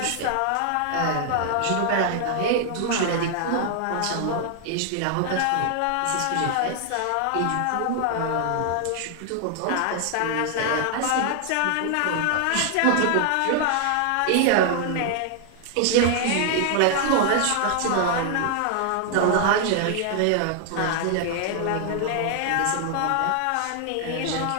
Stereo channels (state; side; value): different; both; correlation 0.00